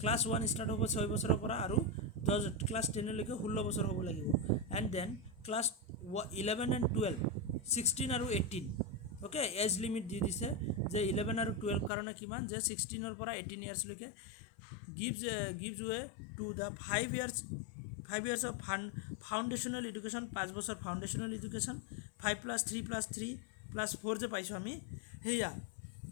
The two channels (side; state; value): right; drops out; at 11.9 s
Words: ক্লাছ 1 ষ্টাৰ্ট হ'ব 6 বছৰৰ পৰা আৰু ক্লাছ 10 লৈকে 16 বছৰ হ'ব লাগিব এণ্ড দেন ক্লাছ 11 and 12 16 আৰু 18 ওকে এজ লিমিট দি দিছে যে 11 আৰু 12 কাৰণে কিমান যে 16 পৰা 18 ইয়াৰ্ছলৈকে gives way to the 5 years of foundational education 5 বছৰ foundational education 5+3+3+4 যে পাইছোঁ আমি সেয়া